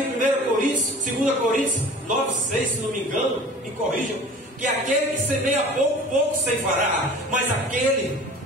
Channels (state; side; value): normal; both; correlation 0.42